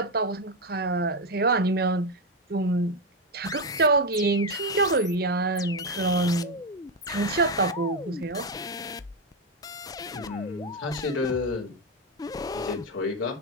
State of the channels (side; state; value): both; normal; correlation 0.09